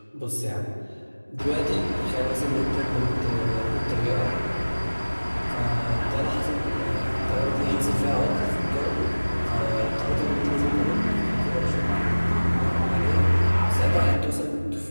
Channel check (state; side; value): inverted; both; correlation -1.00